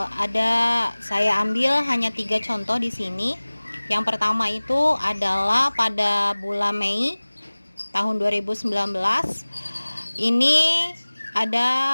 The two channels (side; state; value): both; inverted; correlation -1.00